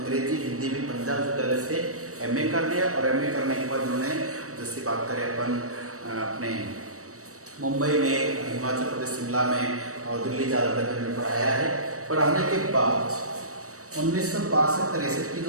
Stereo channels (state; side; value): late; left; 0.65 ms